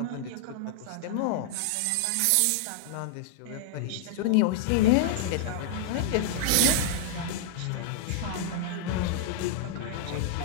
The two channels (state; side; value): different; both; correlation -0.01